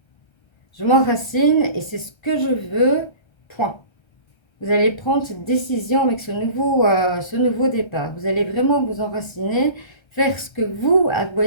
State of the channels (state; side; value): late; right; 1.3 ms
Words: Je m'enracine et c'est ce que je veux, point. vous allez prendre cette décision avec ce nouveau départ. Vous allez vraiment vous enraciner, faire ce que vous